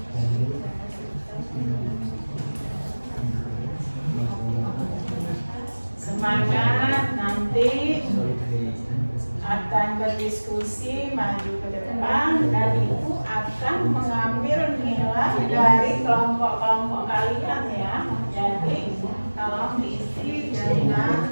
Semangat, nanti akan berdiskusi maju ke depan dan ibu akan mengambil nilai dari kelompok-kelompok kalian ya. Jadi tolong diisi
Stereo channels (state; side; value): inverted; both; correlation -1.00